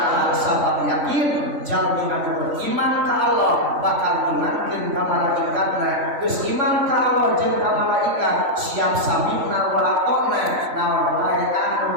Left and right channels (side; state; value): left; late; 3.5 ms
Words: sabab yakin jalmi anu beriman ka Allah bakal imankeun ka malaikatna geus iman ka Allah jeung ka malaikat siap samina wa atona naon wae